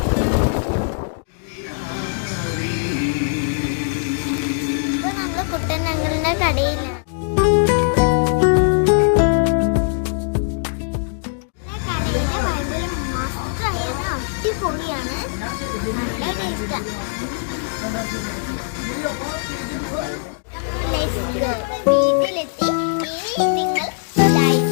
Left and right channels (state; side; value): silent; right; digital silence